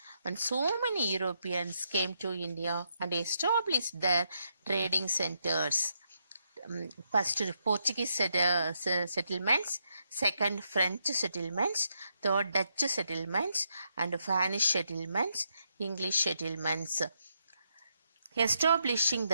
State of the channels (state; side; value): inverted; both; correlation -0.80